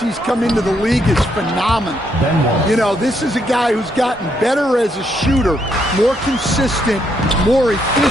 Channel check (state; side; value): normal; both; correlation 0.75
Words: he's come into the league is phenomenal. You know, this is a guy who's gotten better as a shooter, more consistent, more